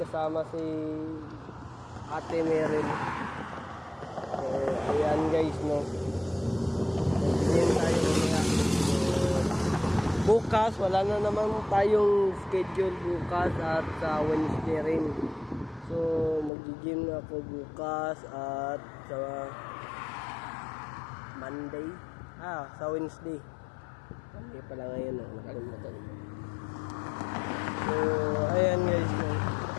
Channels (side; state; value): right; drops out; at 16.5 s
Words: si Ate Meryl. So ayan guys, no? Mag-gym tayo mamaya. Bukas, wala na naman tayong schedule bukas at sa Wednesday rin. So, mag-gym na ako bukas at sa Monday. Sa Wednesday. Monday pala ngayon, nakalimutan. So, ayan guys.